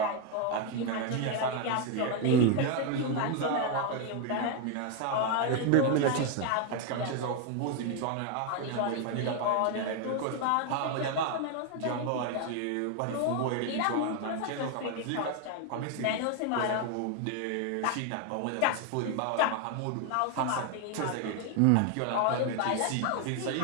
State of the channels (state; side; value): different; both; correlation 0.01